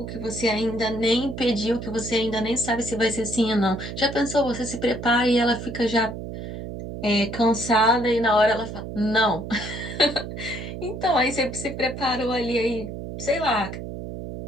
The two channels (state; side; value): noise; right; hum, 8 dB below the sound